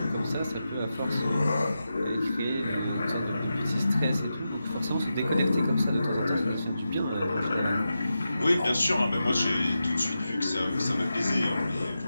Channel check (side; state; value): both; inverted; correlation -0.90